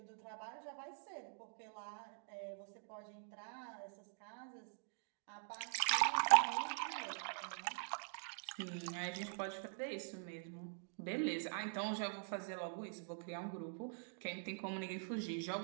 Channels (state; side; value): silent; left; digital silence